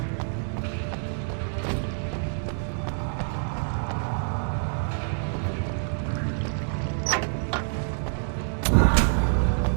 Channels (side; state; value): left; silent; digital silence